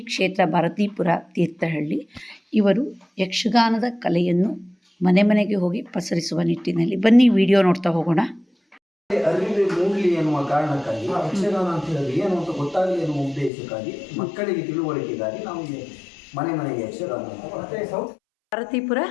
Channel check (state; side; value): drops out; right; at 13.5 s